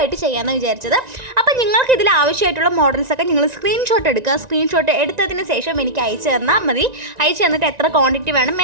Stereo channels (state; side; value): late; left; 1.9 ms